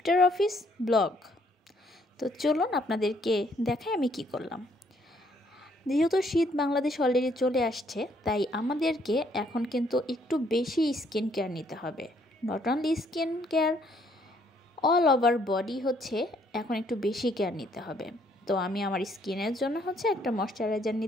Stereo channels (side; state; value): both; normal; correlation 0.67